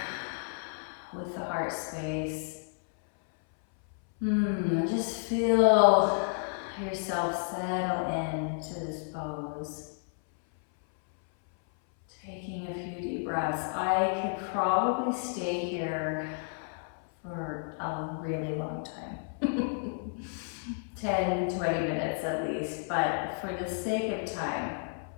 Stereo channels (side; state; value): right; silent; 57 dB below the other